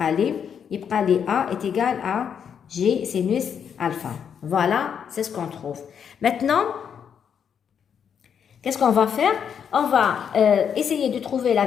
يبقى لي A est égal à G sinus alpha. Voilà, c'est ce qu'on trouve. Maintenant, qu'est-ce qu'on va faire? On va essayer de trouver la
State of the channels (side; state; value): right; quieter; 7.7 dB